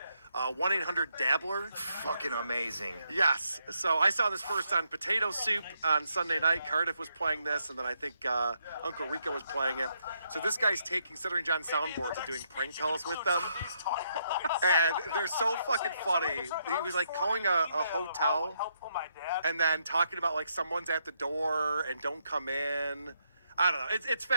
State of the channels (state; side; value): inverted; both; correlation -0.77